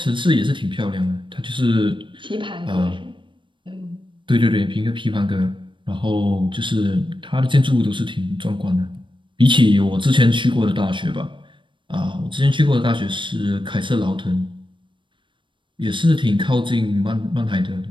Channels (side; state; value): left; late; 0.24 ms